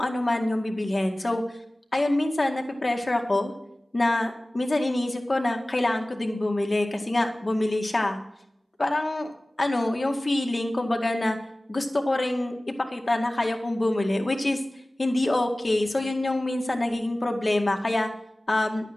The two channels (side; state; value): both; normal; correlation 0.98